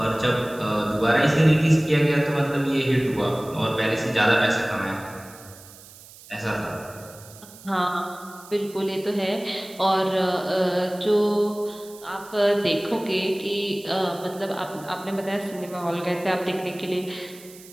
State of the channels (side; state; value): right; noise; hiss, 20 dB below the sound